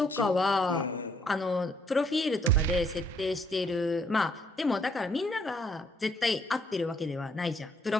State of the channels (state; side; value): normal; both; correlation 0.68